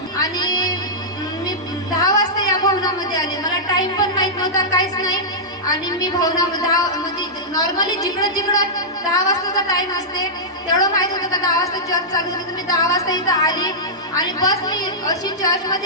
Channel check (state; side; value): normal; both; correlation -0.12